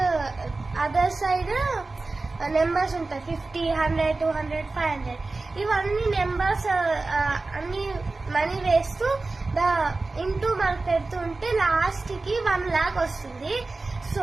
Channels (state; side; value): quieter; left; 3.5 dB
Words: అదర్ సైడ్ నెంబర్స్ ఉంటాయి. 50, 100, 200, 500 ఇవన్నీ నెంబర్స్ అన్ని మనీ వేస్తూ ఇంటూ మనకు పెడుతూ ఉంటే లాస్ట్ కి 1 lakh వస్తుంది. సో